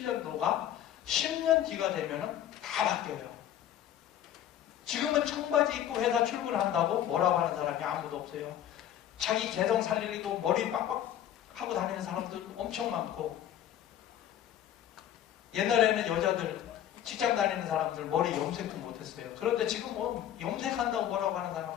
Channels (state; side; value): quieter; right; 11.1 dB